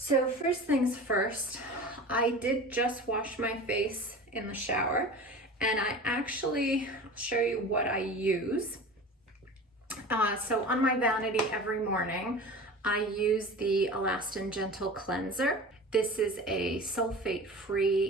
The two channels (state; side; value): normal; both; correlation 0.35